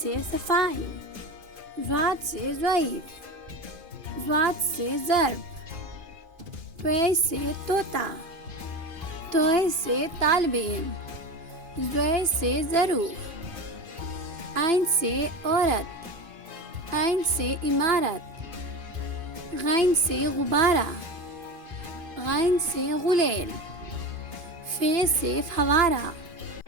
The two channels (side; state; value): left; late; 2.5 ms